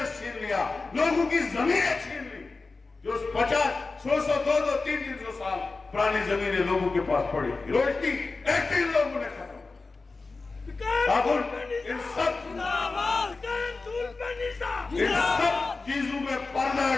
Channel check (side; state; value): right; quieter; 3.8 dB